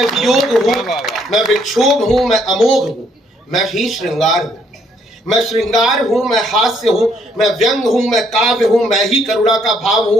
वियोग हूं। मैं विक्षोभ हूं, मैं अमोघ हूं। मैं ही श्रृंगार हूं, मैं श्रृंगार हूं, मैं हास्य हूं, मैं व्यंग हूं, मैं काव्य हूं। मैं ही करुणा का भाव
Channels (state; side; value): normal; both; correlation 0.68